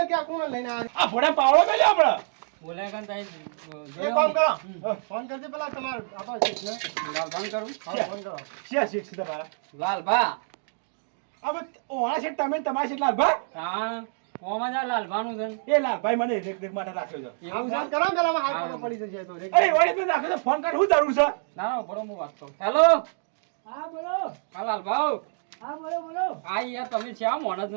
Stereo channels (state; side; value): silent; left; digital silence